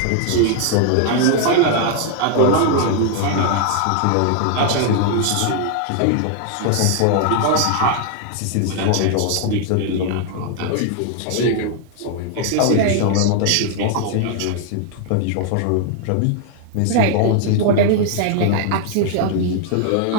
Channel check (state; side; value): different; both; correlation 0.00